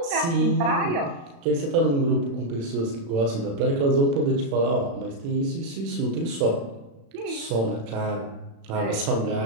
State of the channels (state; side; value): late; left; 36 ms